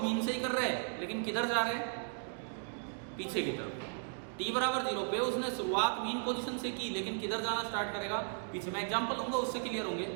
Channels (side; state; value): left; silent; digital silence